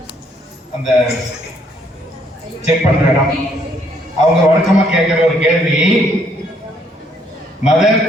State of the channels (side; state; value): both; normal; correlation 0.68